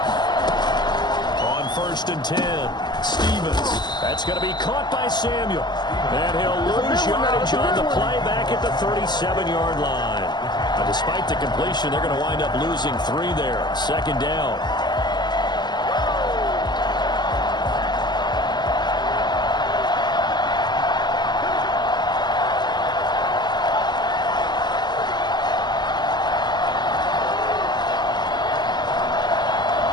On 1st and 10, Stevens. That's going to be caught by Samuel. And he'll lose yardage on the play back at the 37-yard line. Despite the completion, they're going to wind up losing 3 there. 2nd down.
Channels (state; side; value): late; right; 0.21 ms